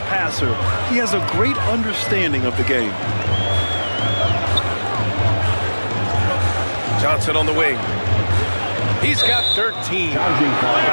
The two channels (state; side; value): inverted; both; correlation -1.00